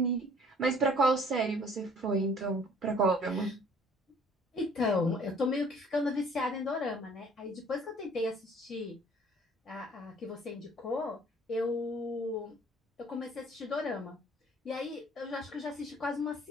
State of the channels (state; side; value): normal; both; correlation 0.54